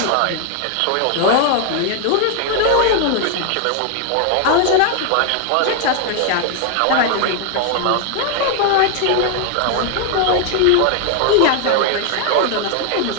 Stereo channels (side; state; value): both; different; correlation 0.00